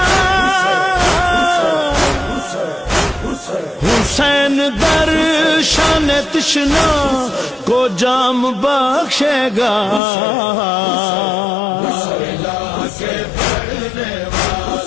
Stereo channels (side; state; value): right; drops out; at 10.0 s